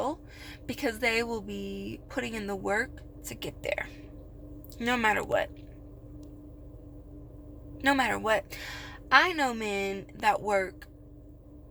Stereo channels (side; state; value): both; identical; correlation 1.00